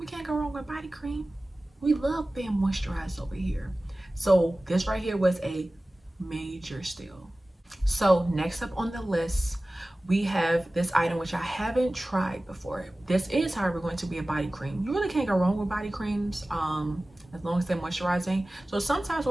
can't go wrong with body cream. We love being moisturized over here. So this right here was a major steal. So next up on the list, we have this item which I haven't tried before. This is, however, going to be a body cream. You really can't go wrong with body creams as long as they're moisturizing. So sometimes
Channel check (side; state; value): both; normal; correlation 0.97